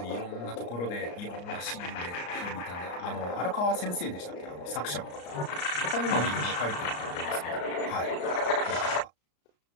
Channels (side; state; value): right; late; 34 ms